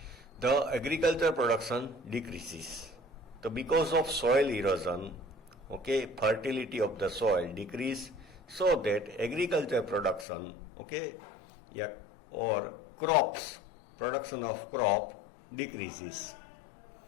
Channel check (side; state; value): right; drops out; at 10.2 s